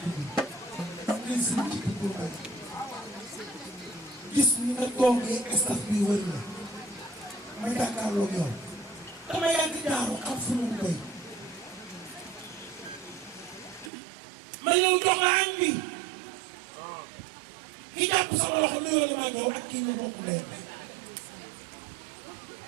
dugg gis ci dugg gis ñu nga toogee staff bi wër na ma jàkkaarloog yow dama yàgg jaaru xam fu mu koy ma ñëw jox la añ bi ki jàpp sama loxo nuyoo la maa ñëw ak kii nga bokk leen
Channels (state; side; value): drops out; left; at 13.9 s